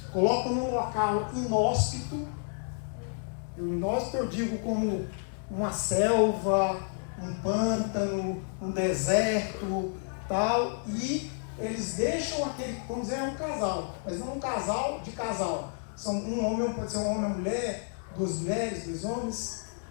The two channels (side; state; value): right; silent; 58 dB below the other